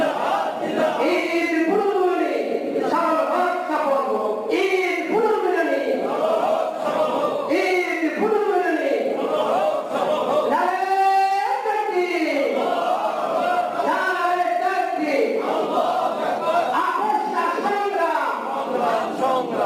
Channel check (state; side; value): identical; both; correlation 1.00